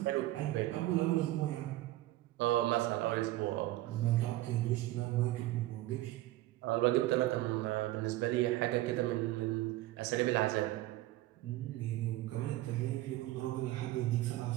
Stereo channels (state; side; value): quieter; left; 16.5 dB